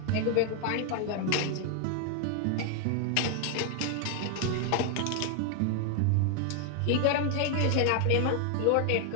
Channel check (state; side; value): different; both; correlation 0.00